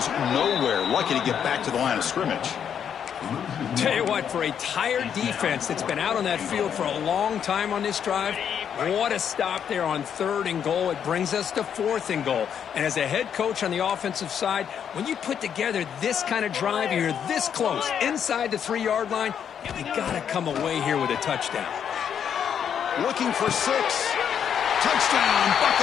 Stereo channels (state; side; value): quieter; right; 8.3 dB